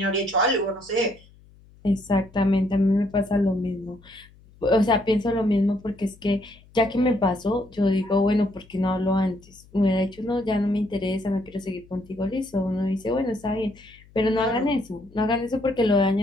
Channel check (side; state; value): left; noise; hum, 26 dB below the sound